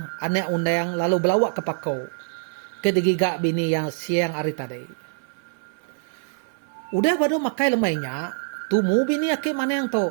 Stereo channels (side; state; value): left; silent; 60 dB below the other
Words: anak undang lalu belawak ke pakau. Ke digiga bini yang siang hari tadi. Udah baru makai lemainya, tumu bini ake maneng